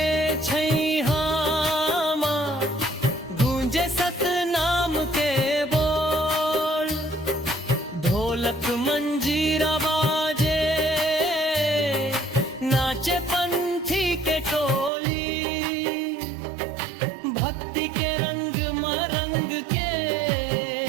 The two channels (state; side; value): drops out; left; at 14.9 s